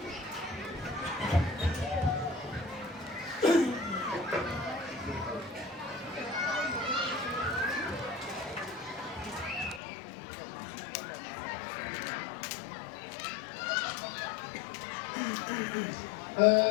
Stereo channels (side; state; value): right; drops out; at 9.8 s